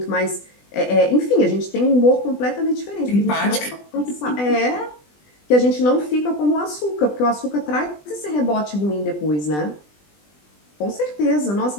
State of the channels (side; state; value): right; late; 20 ms